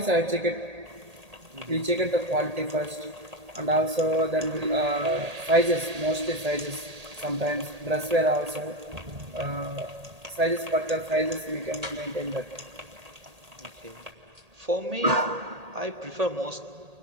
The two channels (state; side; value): late; left; 1.8 ms